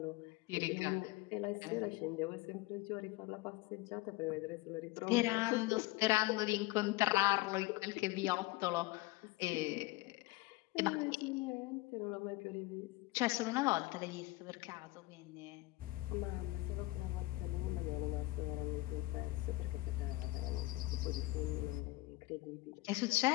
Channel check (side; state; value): right; quieter; 20.6 dB